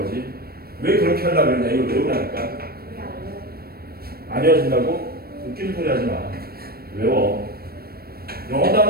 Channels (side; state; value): left; late; 0.44 ms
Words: 왜 그렇게 하려고 그랬냐? 이걸 외우라니까. 안 외워진다고? 웃기는 소리 하지 마. 외워. 영어